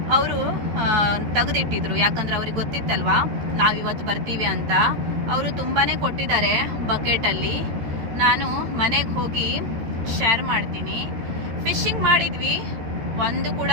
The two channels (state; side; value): late; left; 13 ms